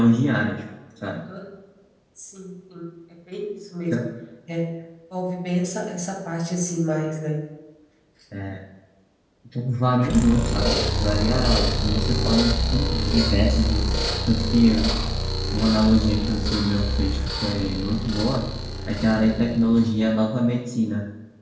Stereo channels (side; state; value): both; identical; correlation 1.00